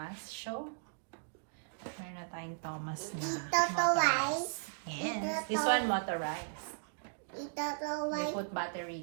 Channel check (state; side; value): silent; left; digital silence